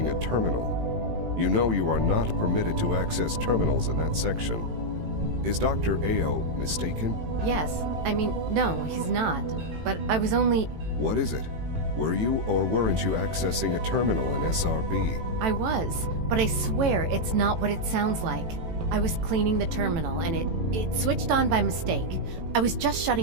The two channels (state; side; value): late; left; 18 ms